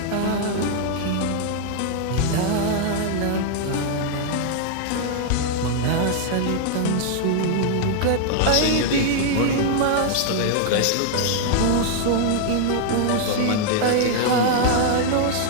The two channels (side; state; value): both; different; correlation 0.00